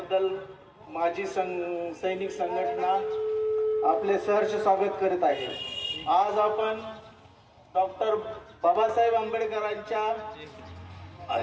माजी सैनिक संघटना आपले सहर्ष स्वागत करीत आहे। आज आपण डॉक्टर बाबासाहेब आंबेडकरांच्या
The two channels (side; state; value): both; identical; correlation 1.00